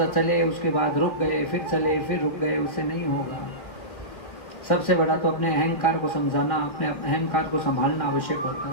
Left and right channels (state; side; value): late; right; 1.7 ms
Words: चले, उसके बाद रुक गए, फिर चले, फिर रुक गए, उससे नहीं होगा। सबसे बड़ा तो अपने अहंकार को समझाना, अपने अहंकार को संभालना आवश्यक होता